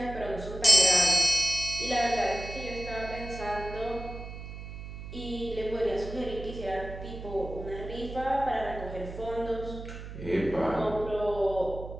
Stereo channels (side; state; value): right; noise; hum, 11 dB below the sound